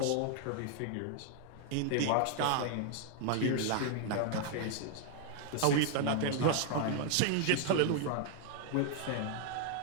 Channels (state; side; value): different; both; correlation 0.00